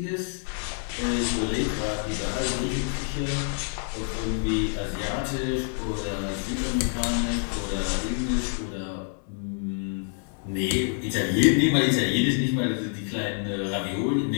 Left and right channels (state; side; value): silent; right; 60 dB below the other